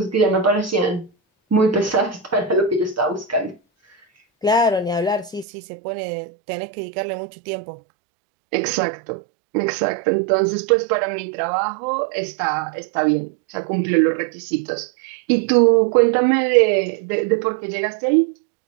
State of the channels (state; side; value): drops out; left; at 5.5 s